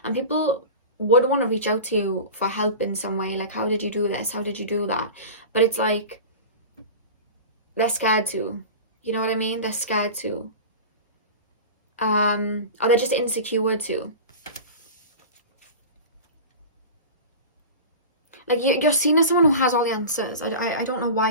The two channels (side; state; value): both; inverted; correlation -0.32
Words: and people would want to reach out to you for help in some way. Like, how did you do this? How did you do that? But it's like, they're scared to. You know what I mean? They're scared to. Or they're just insecure too. like you're seen as someone who has all the answers. I don't know why